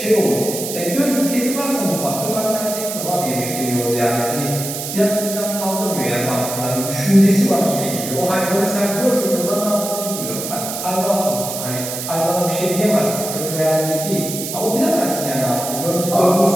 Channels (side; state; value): right; noise; hiss, 6 dB below the sound